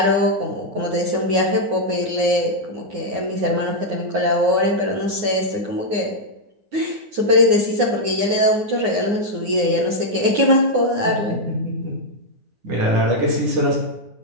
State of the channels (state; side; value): late; left; 9.6 ms